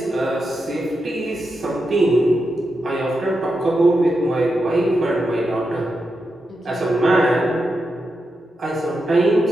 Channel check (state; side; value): normal; both; correlation 0.87